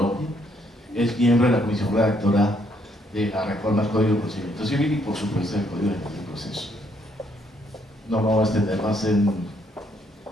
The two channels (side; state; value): both; normal; correlation 0.70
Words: Es miembro de la comisión redactora de la reforma al Código de Procedimiento Civil y, por supuesto, del Código General del Proceso. No me voy a extender más en